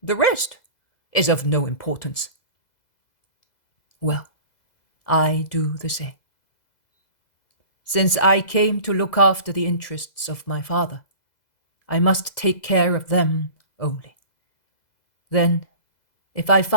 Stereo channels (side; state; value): right; late; 2.0 ms